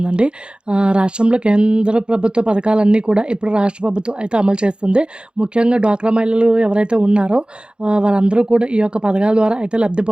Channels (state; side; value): late; left; 0.053 ms